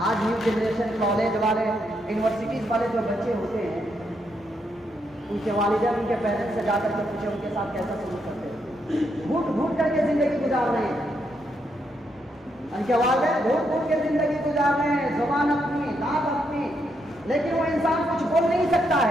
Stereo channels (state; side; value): normal; both; correlation 0.79